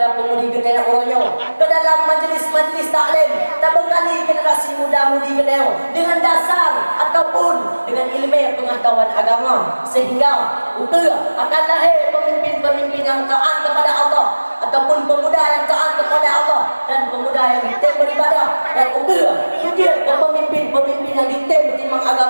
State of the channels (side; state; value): both; inverted; correlation -1.00